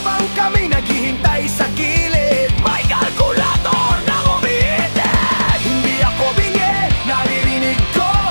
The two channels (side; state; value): both; inverted; correlation -1.00